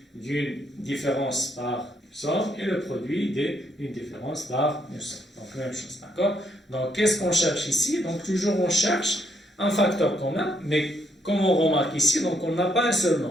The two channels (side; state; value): both; normal; correlation 0.74